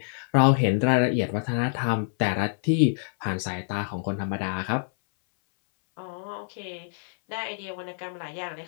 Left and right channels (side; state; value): right; silent; 61 dB below the other